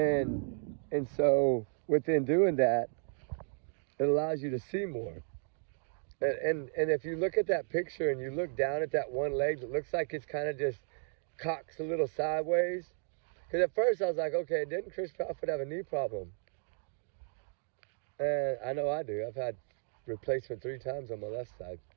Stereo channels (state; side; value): silent; left; 55 dB below the other